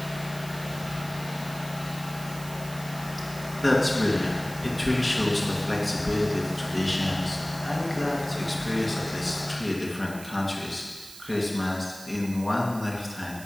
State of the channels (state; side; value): noise; right; hiss, 15 dB below the sound